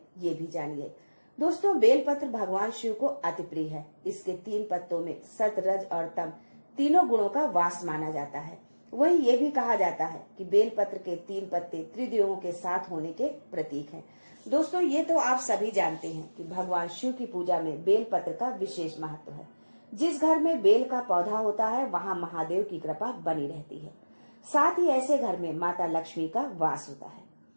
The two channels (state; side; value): inverted; both; correlation -1.00